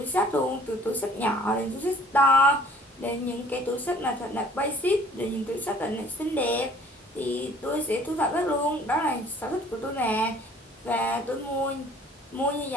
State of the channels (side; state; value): both; normal; correlation 0.53